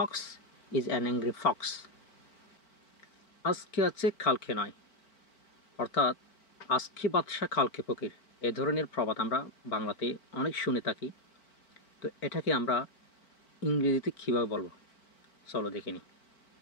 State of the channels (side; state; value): right; late; 4.5 ms